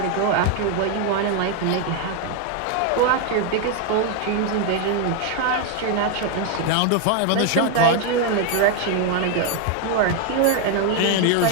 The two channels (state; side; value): different; both; correlation 0.01